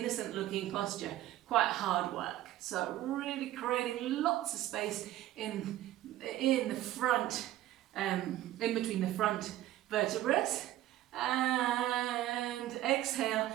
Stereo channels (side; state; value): left; quieter; 14.2 dB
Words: looking posture quite hard work. So really creating lots of space in the front, in between the front vertebrae. And exhale,